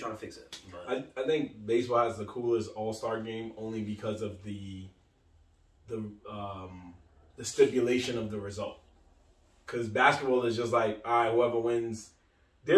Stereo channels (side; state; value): both; identical; correlation 1.00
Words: to fix it? But I think baseball has the coolest All-Star game only because of the stipulation of the result. Because basketball is just like, all right, whoever wins.